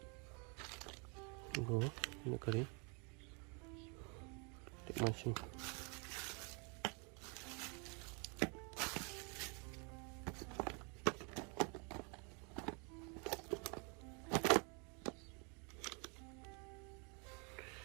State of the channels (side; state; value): left; quieter; 34.4 dB